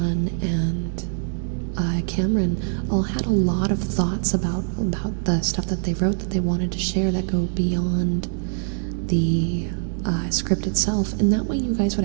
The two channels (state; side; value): silent; left; digital silence